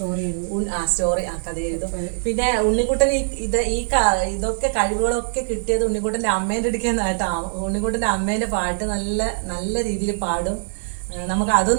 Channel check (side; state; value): left; silent; digital silence